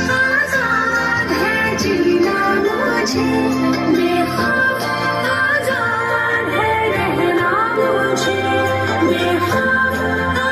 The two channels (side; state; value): both; identical; correlation 1.00